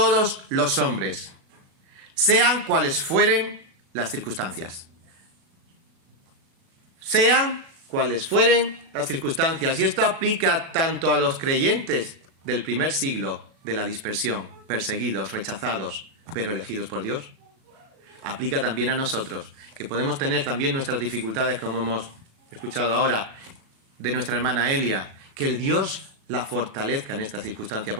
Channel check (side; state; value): left; late; 37 ms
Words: los hombres, sean cuales fueren las circunstancias. Sean cuales fueren las circunstancias. Y esto aplica tanto a los creyentes del primer siglo de la dispersión, perseguidos, rechazados, pero elegidos por Dios. Aplica también a nosotros, que podemos tener también nuestras dificultades, como hemos escuchado ahora de nuestra hermana Elia, que el Dios la fortalezca en esta circunstancia,